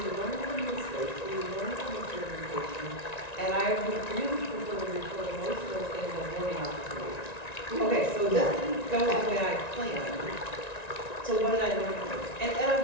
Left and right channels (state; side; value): late; right; 1.9 ms